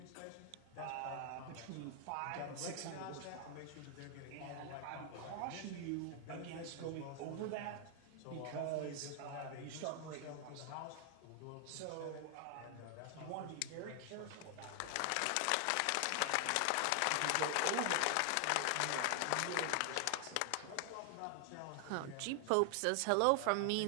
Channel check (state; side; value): different; both; correlation 0.00